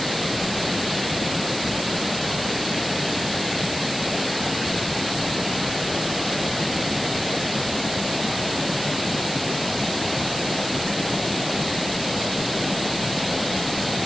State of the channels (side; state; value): right; noise; hiss, 7 dB below the sound